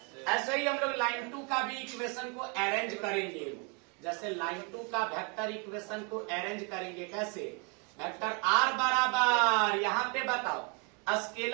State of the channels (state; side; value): quieter; left; 34.7 dB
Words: ऐसे ही हम लोग लाइन 2 का भी इक्वेशन को अरेंज करेंगे। जैसे लाइन 2 का वेक्टर इक्वेशन को अरेंज करेंगे, कैसे? वेक्टर r बराबर, यहाँ पे बताओ